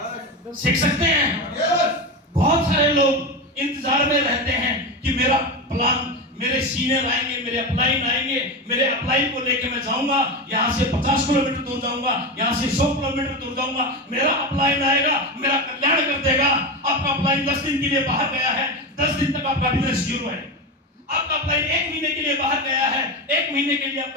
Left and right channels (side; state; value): both; normal; correlation 0.19